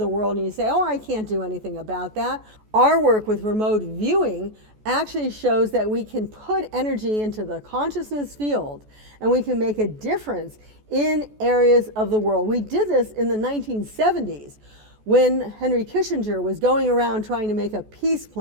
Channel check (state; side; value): late; left; 14 ms